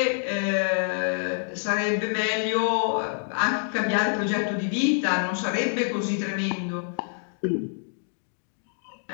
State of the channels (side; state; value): right; silent; digital silence